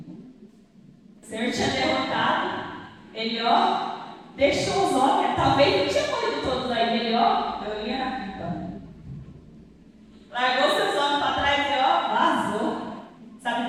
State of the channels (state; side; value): identical; both; correlation 1.00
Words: O Senhor tinha derrotado. Ele, deixou os homens. Talvez não tinha morrido todos aí. Ele, eu ia na pipa. Largou seus homens para trás e, vazou.